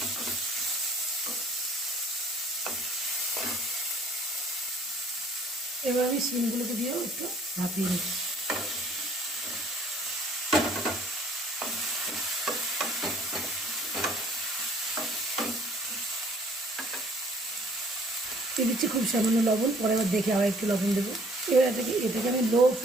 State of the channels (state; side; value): normal; both; correlation 0.58